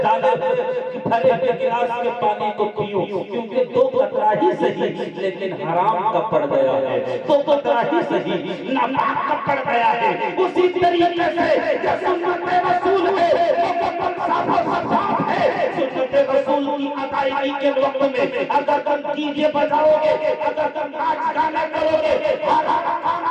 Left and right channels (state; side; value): identical; both; correlation 1.00